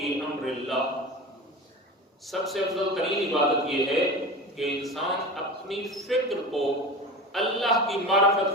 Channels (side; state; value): both; normal; correlation 0.30